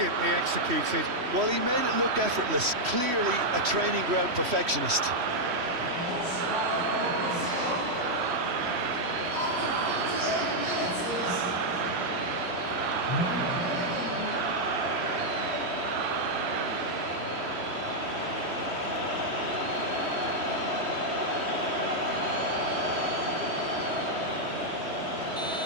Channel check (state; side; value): late; left; 3.1 ms